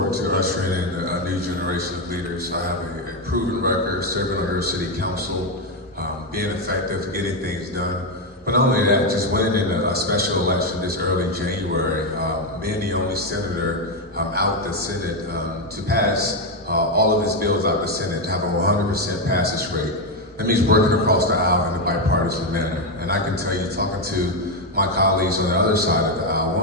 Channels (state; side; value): normal; both; correlation 0.06